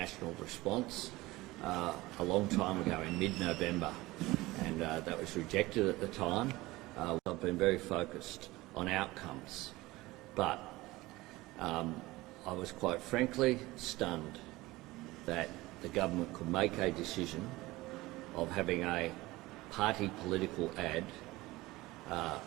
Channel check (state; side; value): quieter; left; 19.7 dB